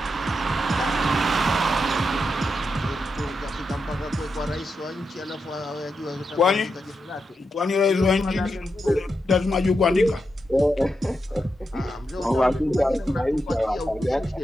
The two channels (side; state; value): both; normal; correlation 0.86